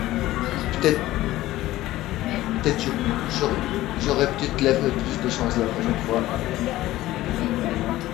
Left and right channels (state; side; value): quieter; right; 16.0 dB